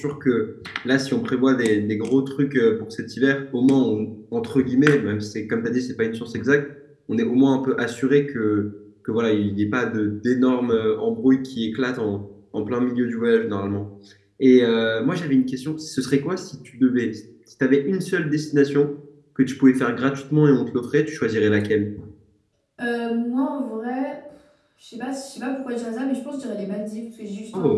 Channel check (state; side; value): identical; both; correlation 1.00